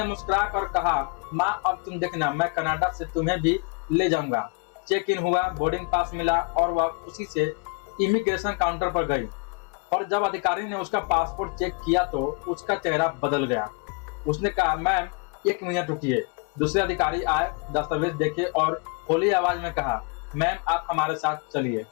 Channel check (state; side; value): quieter; right; 33.2 dB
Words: मुस्कुरा कर कहा, माँ अब तुम देखना, मैं कनाडा से तुम्हें भी ले जाऊंगा। चेक इन हुआ, बोर्डिंग पास मिला और वह खुशी से इमिग्रेशन काउंटर पर गई। और जब अधिकारी ने उसका पासपोर्ट चेक किया तो उसका चेहरा बदल गया। उसने कहा, मैम 1 मिनट रुकिए। दूसरे अधिकारी आए, दस्तावेज देखे और होली आवाज में कहा, मैम आप हमारे साथ चलिए,